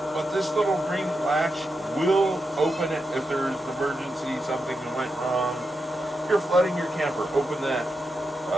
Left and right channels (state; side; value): normal; both; correlation 0.86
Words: But this little green latch will open it if there's an emergency, something went wrong. You're flooding your camper, open that.